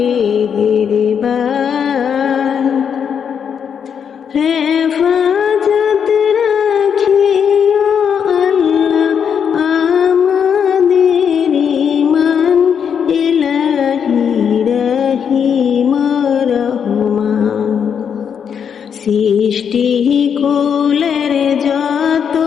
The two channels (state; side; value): quieter; right; 7.5 dB